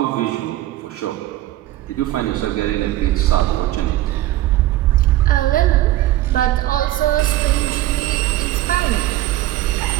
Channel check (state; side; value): quieter; left; 15.3 dB